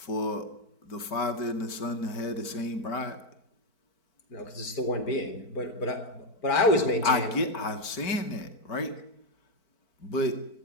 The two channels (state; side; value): late; right; 4.5 ms